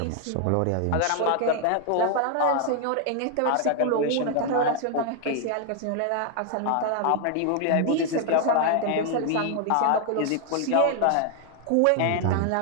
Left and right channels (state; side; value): different; both; correlation 0.00